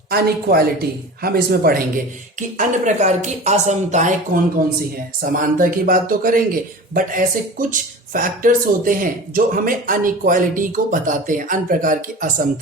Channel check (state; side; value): normal; both; correlation 0.35